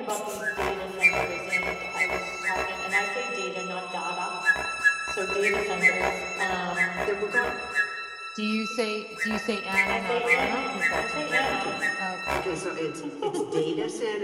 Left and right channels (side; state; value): both; identical; correlation 1.00